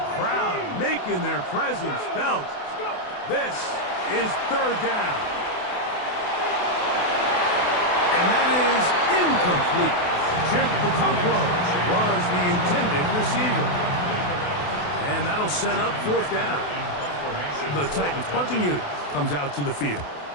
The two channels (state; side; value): late; right; 28 ms